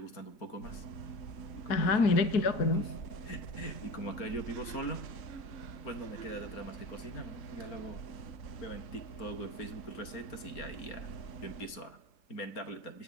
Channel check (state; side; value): late; right; 4.3 ms